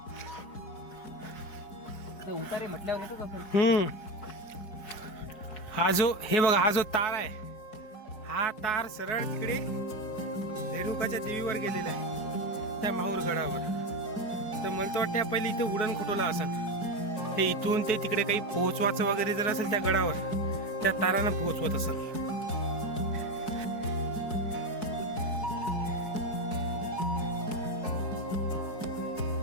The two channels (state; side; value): late; right; 4.7 ms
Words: उतारे म्हटल्यावर येतो का? हा जो, हे बघा, हा जो तार आहे, हा तार सरळ तिकडे रेणुकाच्या देवीवर गेलेला आहे, त्या माहूर गडावर. तर मला तर वाटतं पहिले इथं उडण खटोला असन. हे इथून ते तिकडे काही पोहोचवायचं वगैरे जर असेल त्या गडावर, त्या तारानं पोहोचवत असेल.